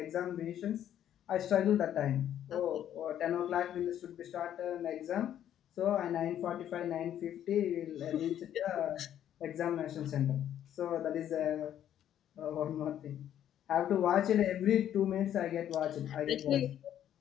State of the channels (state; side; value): quieter; right; 10.7 dB